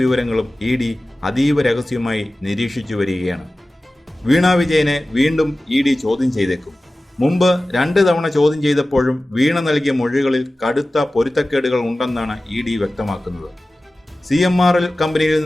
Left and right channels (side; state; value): both; normal; correlation 0.96